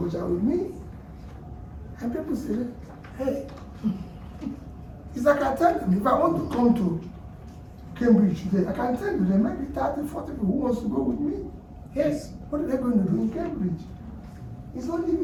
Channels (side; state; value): both; identical; correlation 1.00